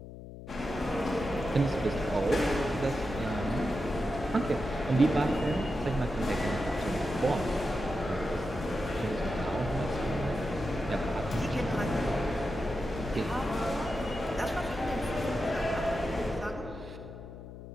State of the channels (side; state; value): left; noise; hum, 13 dB below the sound